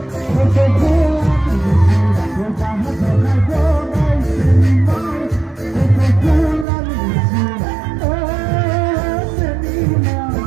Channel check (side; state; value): left; drops out; at 6.7 s